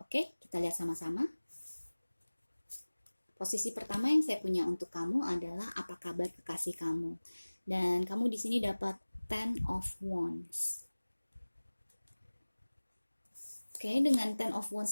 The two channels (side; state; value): both; inverted; correlation -1.00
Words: kita lihat sama-sama. Posisi pertama yang saya punya untuk kamu adalah apa kabar kekasih kamu. Dan kamu di sini dapat Ten of Wands. Oke, dengan Ten of